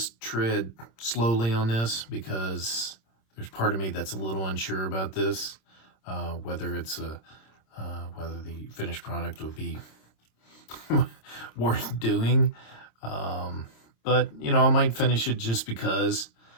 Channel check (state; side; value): late; right; 26 ms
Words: tread slowly on this because there's part of me that's a little unsure about this, whether it's whether the finished product would be worth doing. But, you know, I might finish it just because.